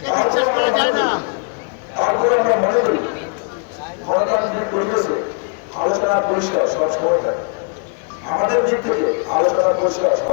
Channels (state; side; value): quieter; right; 38.9 dB